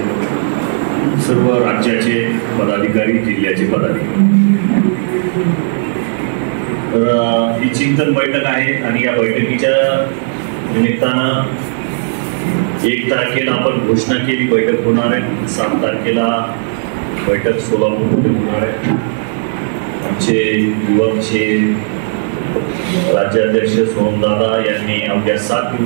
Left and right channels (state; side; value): silent; left; digital silence